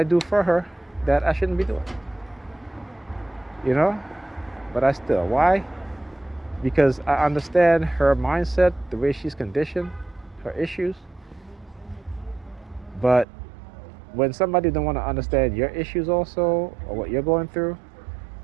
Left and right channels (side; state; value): left; drops out; at 13.2 s